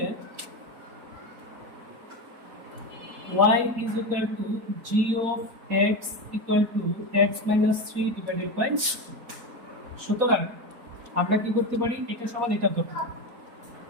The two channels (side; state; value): left; late; 4.1 ms